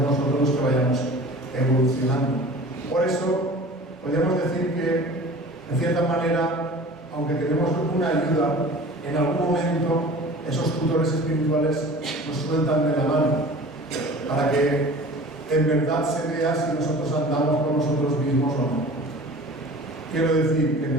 los que vayamos evolucionando. Por eso, podríamos decir que, en cierta manera, aunque tenemos una ayuda, en algún momento esos tutores espirituales nos sueltan de la mano para que en verdad se vea si nosotros andamos con nosotros mismos o no. Quiero decir que en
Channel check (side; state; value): both; normal; correlation 0.42